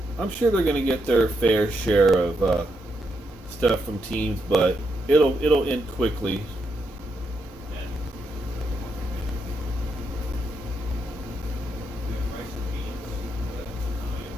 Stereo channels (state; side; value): normal; both; correlation 0.81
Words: they're going to get their fair share of stuff from teams, but it'll end quickly.